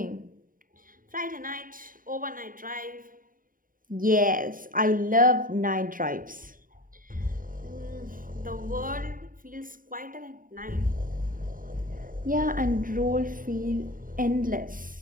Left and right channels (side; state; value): left; late; 0.40 ms